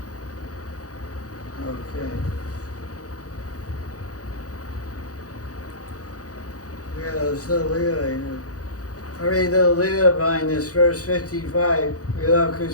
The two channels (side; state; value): right; late; 0.67 ms